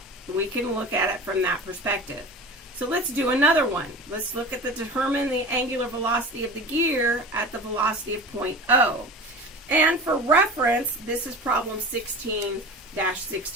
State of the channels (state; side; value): normal; both; correlation 0.34